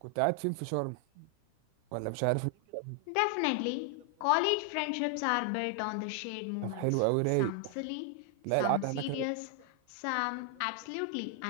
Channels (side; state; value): both; different; correlation 0.00